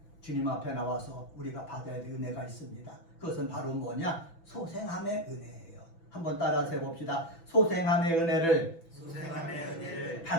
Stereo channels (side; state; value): right; late; 6.0 ms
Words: 주님 앞에 나와서 우리가 받아야 될 은혜가 있습니다. 그것은 바로 뭐냐? 소생함의 은혜예요. 한번 따라서 해봅시다. 소생함의 은혜를